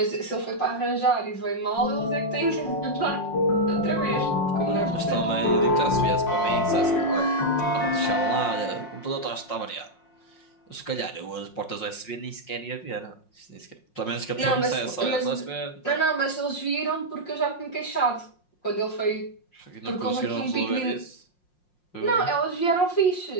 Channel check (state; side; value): late; right; 5.6 ms